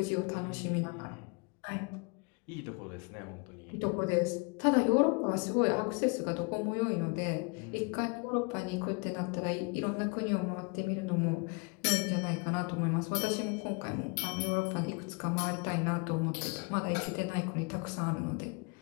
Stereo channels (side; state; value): right; quieter; 32.4 dB